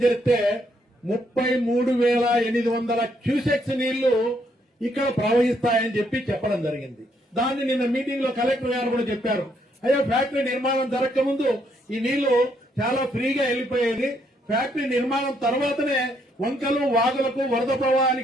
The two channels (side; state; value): both; normal; correlation 0.73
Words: చేస్తే 33,800 క్యూసెక్స్ నీళ్లు ఇక్కడ ప్రవహిస్తాయని చెప్పి చెప్పడం జరిగింది. దాన్ని నిన్న మీటింగ్ లో కలెక్టర్ గారు కూడా చెప్పారు, అయ్యో ఫ్యాక్టరీ నిర్మాణం జరగక ముందు ఈ నీళ్లు చాలా ఫ్రీగా వెళ్లిపోయేది, ఫ్యాక్టరీ నిర్మాణం తర్వాతనే వంకలు వాగులకు వరద